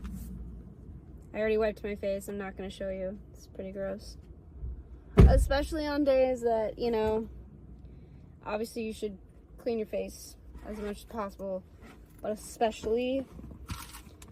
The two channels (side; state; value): both; identical; correlation 1.00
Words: I already wiped my face. I'm not going to show you. It's pretty gross. Especially on days that, obviously you should clean your face as much as possible, but especially